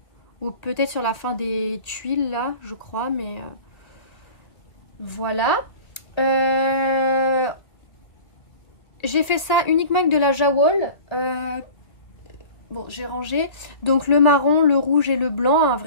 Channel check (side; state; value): right; late; 2.2 ms